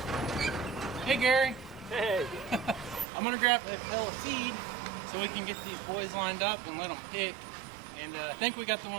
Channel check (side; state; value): left; drops out; at 3.1 s